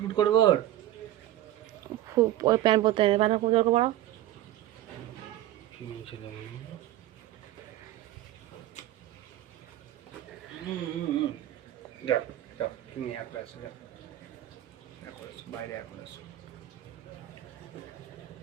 করবো। ওই প্যান্ট পরতে প্যান্ট খুব জোর পড়াও। যাও যাও, তুমি একবার আসো, যাও এখন আসো, বাইরে এখন আসো।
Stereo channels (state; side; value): quieter; left; 14.0 dB